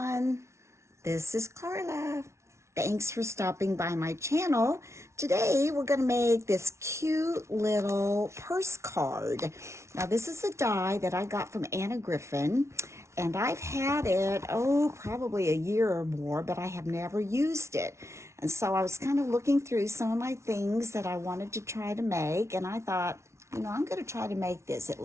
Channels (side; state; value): left; late; 0.13 ms